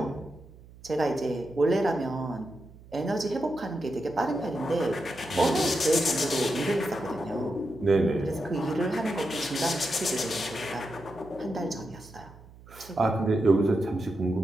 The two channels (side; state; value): right; noise; hum, 21 dB below the sound